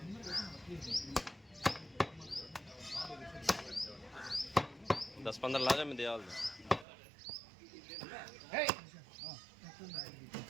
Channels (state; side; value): drops out; left; at 6.9 s